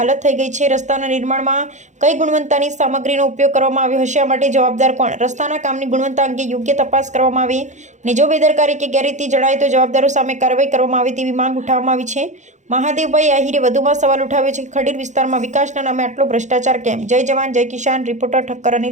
થઈ ગઈ છે. રસ્તાના નિર્માણમાં કઈ ગુણવત્તાની સામગ્રીનો ઉપયોગ કરવામાં આવ્યો હશે, આ માટે જવાબદાર કોણ? રસ્તાના કામની ગુણવત્તા અંગે યોગ્ય તપાસ કરવામાં આવે અને જો બેદરકારી કે ગેરરીતિ જણાય તો જવાબદારો સામે કાર્યવાહી કરવામાં આવે તેવી માંગ ઉઠાવવામાં આવી છે. મહાદેવભાઈ આહિરે વધુમાં સવાલ ઉઠાવ્યો છે કે ખડીર વિસ્તારમાં વિકાસના નામે આટલો ભ્રષ્ટાચાર કેમ? જય જવાન જય કિસાન. રિપોર્ટર ઠક્કર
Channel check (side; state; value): left; late; 0.35 ms